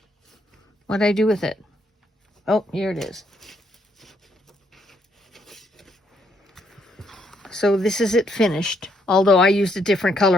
What I do with it. Oh, here it is. So this is it finished. Although I used a different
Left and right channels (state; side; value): normal; both; correlation 0.73